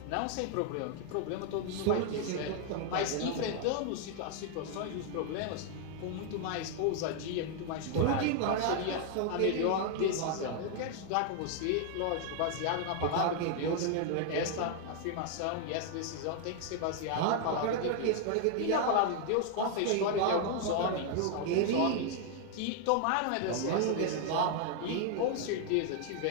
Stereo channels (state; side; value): different; both; correlation 0.00